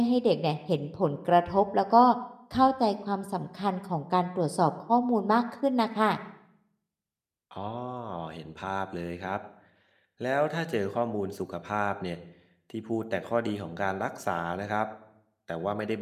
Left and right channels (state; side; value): identical; both; correlation 1.00